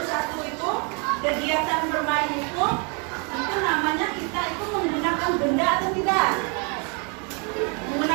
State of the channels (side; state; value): left; quieter; 34.8 dB